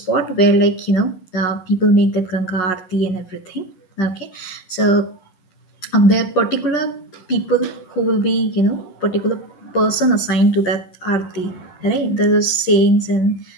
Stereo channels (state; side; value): late; right; 11 ms